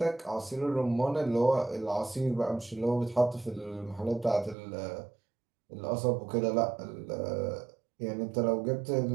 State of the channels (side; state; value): left; drops out; at 4.5 s